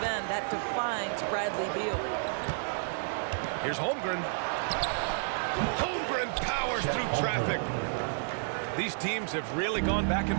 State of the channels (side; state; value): left; silent; digital silence